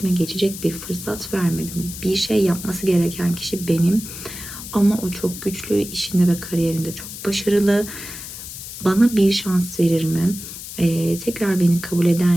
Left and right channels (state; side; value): noise; left; hiss, 11 dB below the sound